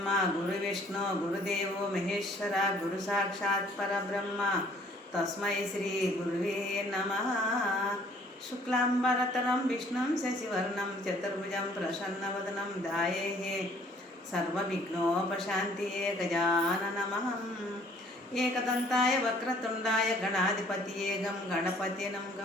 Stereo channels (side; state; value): both; normal; correlation 0.58